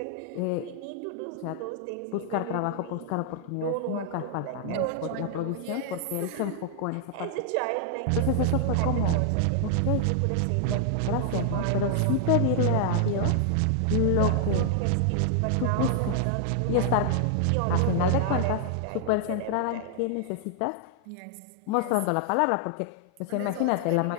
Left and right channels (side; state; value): both; different; correlation 0.00